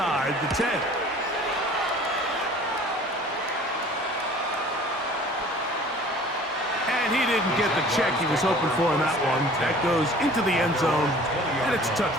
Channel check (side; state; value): both; normal; correlation 0.48